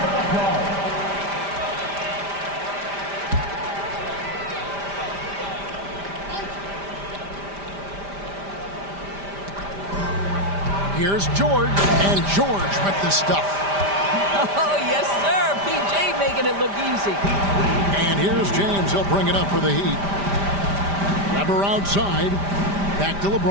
of applause. Here's George, and George with the stuff. Oh, yes, sir. PJ making it look easy. And here's James. He'll bring it up for the Heat. Weber outside. Back to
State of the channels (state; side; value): late; left; 5.0 ms